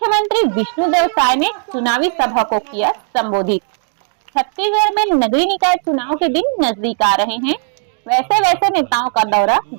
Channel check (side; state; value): left; silent; 62 dB below the other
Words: विष्णुदेव साय ने चुनावी सभा को किया संबोधित। छत्तीसगढ़ में नगरीय निकाय चुनाव के दिन नजदीक आ रहे हैं, वैसे वैसे नेताओं का दौरा